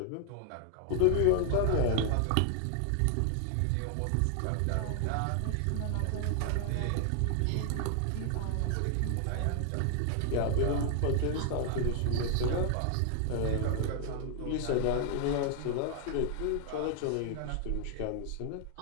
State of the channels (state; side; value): different; both; correlation 0.00